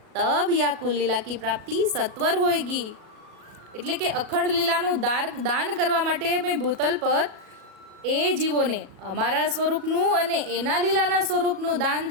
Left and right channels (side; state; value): left; late; 37 ms